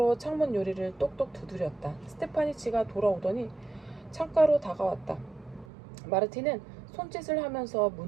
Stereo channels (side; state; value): left; drops out; at 5.7 s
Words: 창문 요리를 똑똑 두드렸다. 스테파니치가 돌아오더니 창가로 다가왔다. 마르틴은 손짓을 하면서